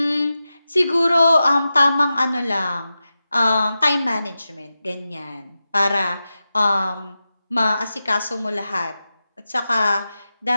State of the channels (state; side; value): inverted; both; correlation -0.92